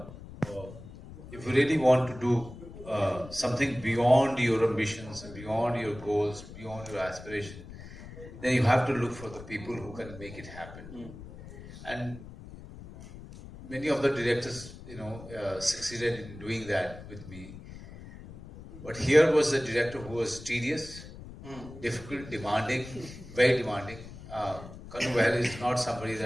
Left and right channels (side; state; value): left; noise; rumble, 15 dB below the sound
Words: if you really want to do something beyond your ambitions, beyond your goals, beyond your aspiration, then you have to look for the people who can make it happen. And many of the directors, succeeded in doing that with me. But here was a director who was tedious, difficult, demanding, very demanding. Kanu Behl is not somebody